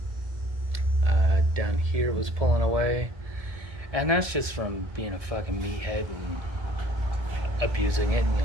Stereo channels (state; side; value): late; left; 1.6 ms